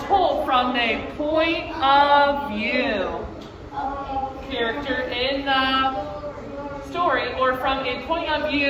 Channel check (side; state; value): both; identical; correlation 1.00